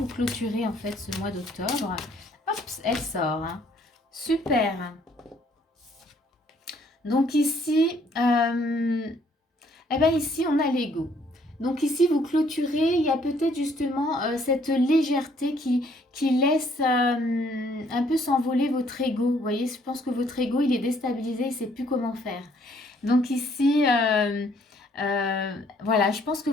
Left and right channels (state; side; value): normal; both; correlation 0.64